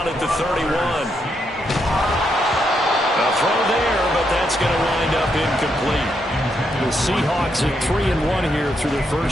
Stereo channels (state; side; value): normal; both; correlation 0.79